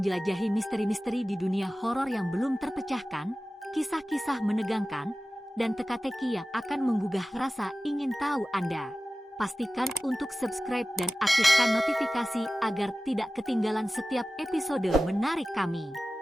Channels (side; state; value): both; normal; correlation 0.96